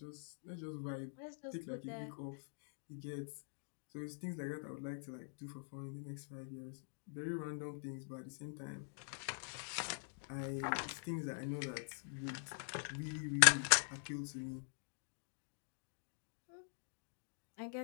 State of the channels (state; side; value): silent; right; digital silence